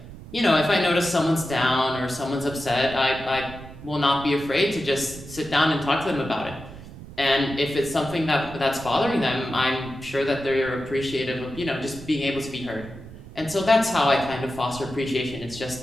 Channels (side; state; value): right; noise; rumble, 15 dB below the sound